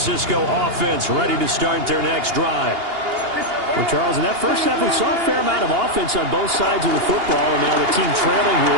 offense ready to start their next drive. Well, Charles, in that first half, we saw a fair amount of offense on both sides of the football, and now the team trailing here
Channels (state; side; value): late; left; 2.8 ms